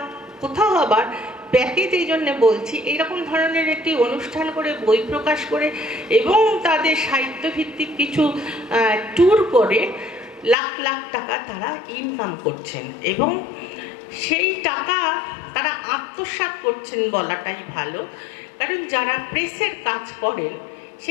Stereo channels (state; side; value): drops out; right; at 10.6 s